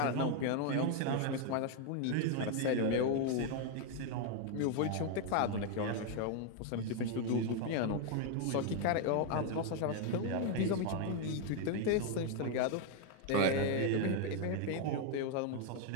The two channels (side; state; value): both; different; correlation 0.01